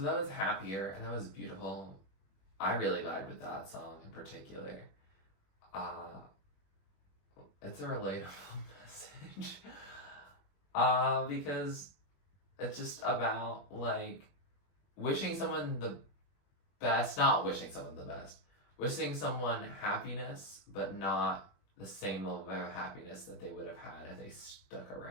that was Happier, and that was beautiful. I really vibed with that song in particular. It's a relatable message. Because it's just about, like, wishing someone the best, not wishing someone the best, wishing someone happiness, but not the same level of happiness that they would have had if they stuck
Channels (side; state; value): right; late; 21 ms